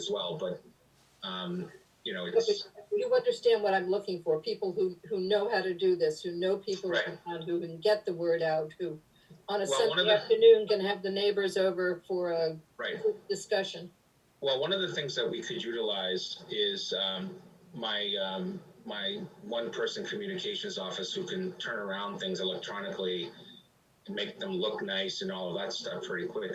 well, but you know, it's You understand what I'm looking for, people who know how to do this, who know people Right. in town, who can get the word out, who on a Well, one of Sunday the- afternoon can have the neighbors over for a right. quick discussion. Well, one of the things that we could utilize is my one-person communications office who can turn around things electronically and make them look nice and all of that stuff pretty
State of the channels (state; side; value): identical; both; correlation 1.00